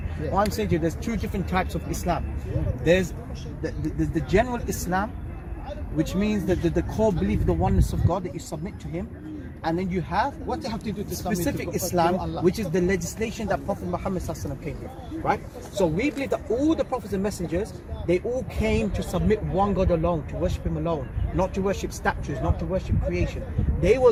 Yeah. What I'm saying to you, there's 2 different types of Islam. There's the general Islam, which means that the core belief of the oneness of God, that you submit to Him. And then you have What they have to do to submit specific to Islam, Allah? which is the legislation that Prophet Muhammad ﷺ came with, right? So we believe that all the prophets and messengers, they all came to submit one God alone, to worship Him alone, not to worship statues, not to worship creation. They were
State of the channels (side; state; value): both; identical; correlation 1.00